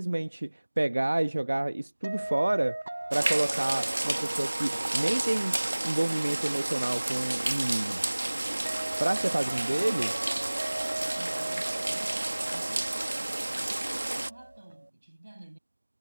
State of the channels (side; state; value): both; inverted; correlation -1.00